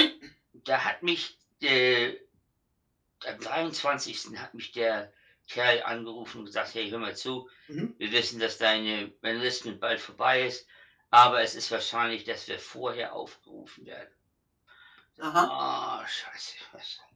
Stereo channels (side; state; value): both; identical; correlation 1.00